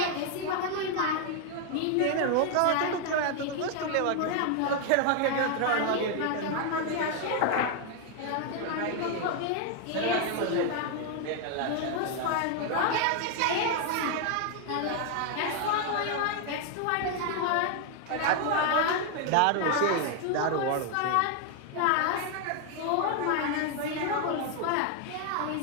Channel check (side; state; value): both; different; correlation 0.01